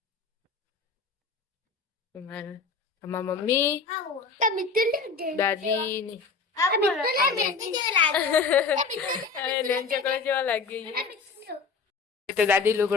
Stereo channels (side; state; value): right; quieter; 4.7 dB